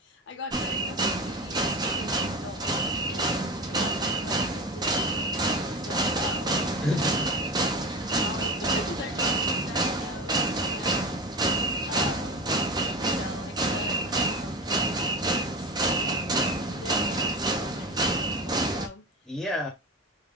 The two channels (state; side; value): normal; both; correlation 0.25